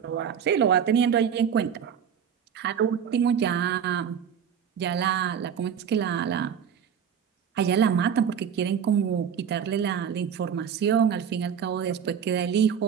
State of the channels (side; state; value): left; quieter; 7.9 dB